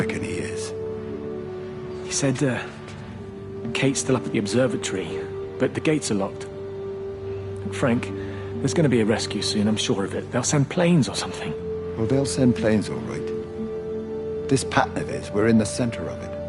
he is. He said, Kate's still up at the observatory, but the gates are locked. Frank, there's going to be a rescue soon, I'm sure of it. They'll send planes or something. Well, they'll send planes, all right. This pattern of his, we're in the center of it.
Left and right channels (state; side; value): identical; both; correlation 1.00